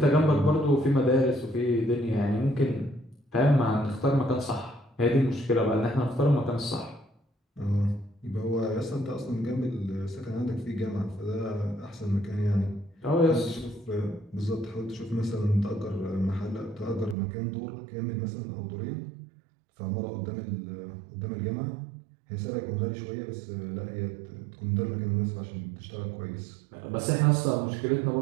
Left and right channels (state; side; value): drops out; left; at 17.2 s